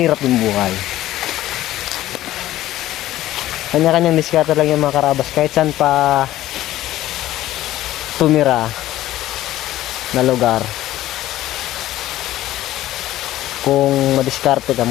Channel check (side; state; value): right; quieter; 14.5 dB